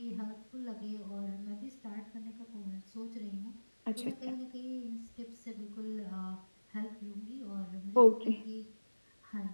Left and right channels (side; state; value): both; inverted; correlation -1.00